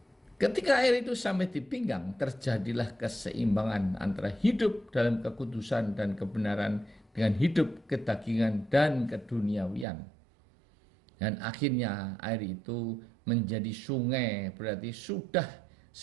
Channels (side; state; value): left; drops out; at 9.9 s